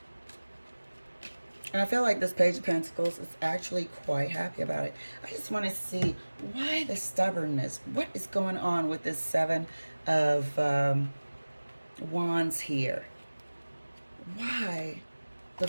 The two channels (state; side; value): inverted; both; correlation -1.00